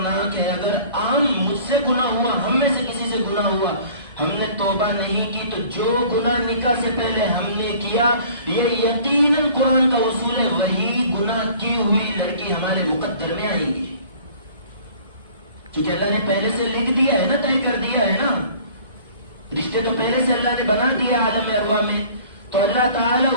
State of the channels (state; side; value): inverted; both; correlation -0.49